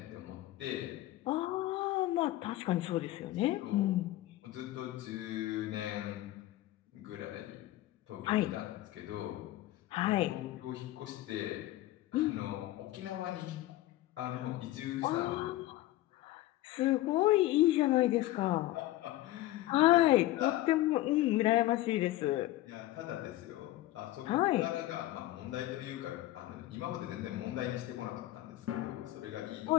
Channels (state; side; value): quieter; right; 15.9 dB